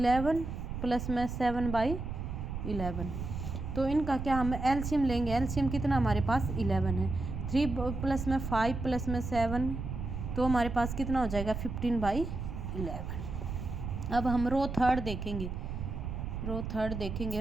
प्लस में 7/11। तो इनका क्या हम एलसीएम लेंगे। एलसीएम कितना हमारे पास 11 है, 3 प्लस में 5 प्लस में 7 तो हमारे पास कितना हो जाएगा 15/11। अब हम रो थर्ड देखेंगे। रो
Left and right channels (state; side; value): noise; right; rumble, 5 dB below the sound